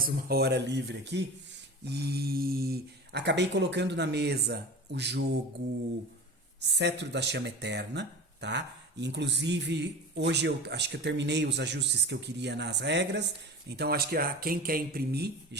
uma hora livre aqui, e acabei colocando na mesa o jogo Cetro da Chama Eterna, tá? Inclusive, hoje eu acho que eu terminei os ajustes que eu queria nas regras, então acho que quem quer imprimir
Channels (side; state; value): both; normal; correlation 0.34